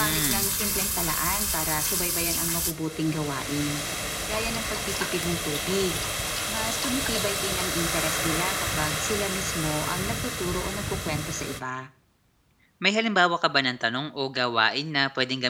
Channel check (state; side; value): identical; both; correlation 1.00